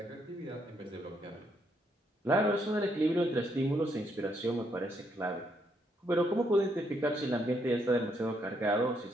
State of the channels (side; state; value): both; normal; correlation 0.75